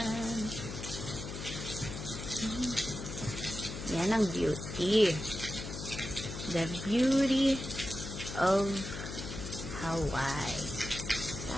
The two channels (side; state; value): left; noise; hum, 7 dB below the sound